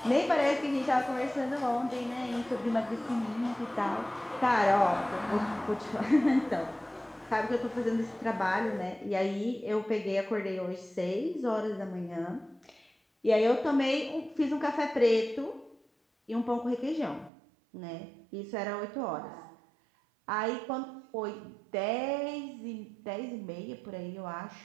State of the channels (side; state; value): left; drops out; at 17.3 s